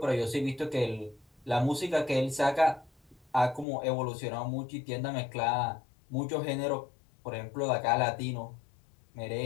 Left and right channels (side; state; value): right; drops out; at 3.7 s